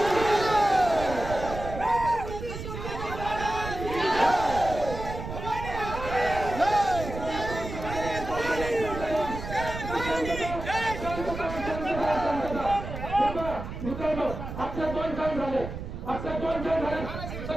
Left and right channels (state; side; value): noise; right; rumble, 8 dB below the sound